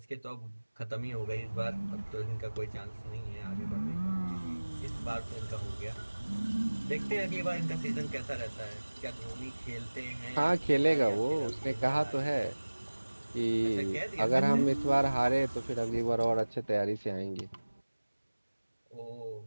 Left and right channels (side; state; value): both; inverted; correlation -1.00